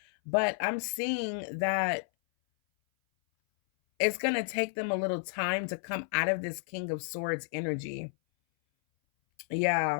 But I'm seeing that it's going to take them a little time to come out of this King of Swords energy.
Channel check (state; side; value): silent; right; 57 dB below the other